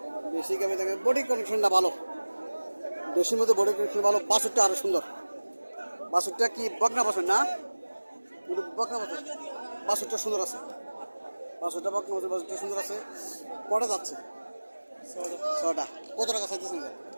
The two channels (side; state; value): both; inverted; correlation -1.00